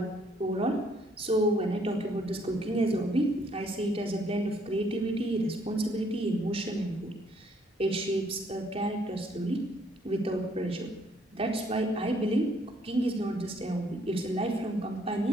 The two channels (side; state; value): both; normal; correlation 0.66